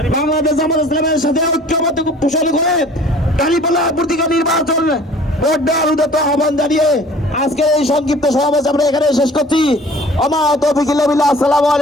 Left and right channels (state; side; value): normal; both; correlation 0.48